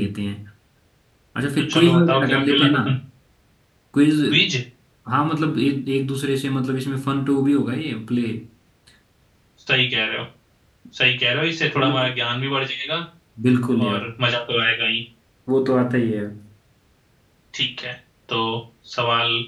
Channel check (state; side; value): identical; both; correlation 1.00